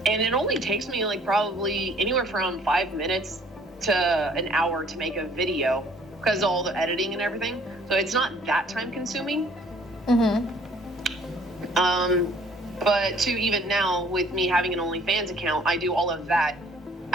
And it only takes me like probably anywhere from 5 minutes to an hour to make a video, because of all the editing and everything. So it's not that time consuming. Mm-hmm. But to even now, with me having an OnlyFans account, I do all of that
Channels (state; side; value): normal; both; correlation 0.58